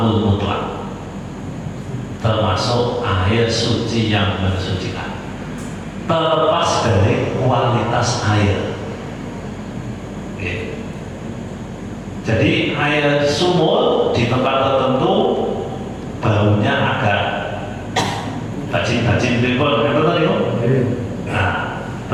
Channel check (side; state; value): both; identical; correlation 1.00